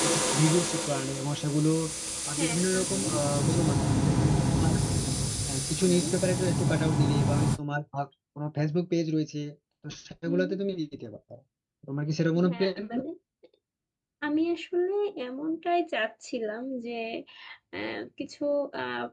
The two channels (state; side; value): identical; both; correlation 1.00